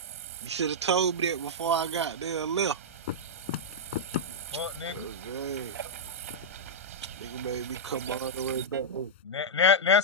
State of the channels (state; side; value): normal; both; correlation -0.08